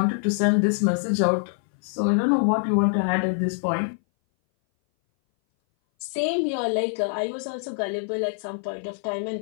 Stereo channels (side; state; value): right; silent; 59 dB below the other